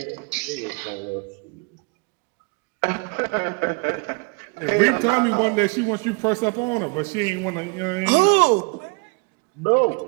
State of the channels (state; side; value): quieter; left; 32.0 dB